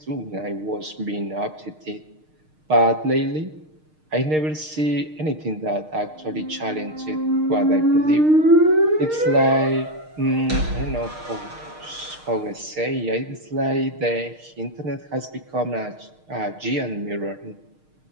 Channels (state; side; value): late; left; 6.5 ms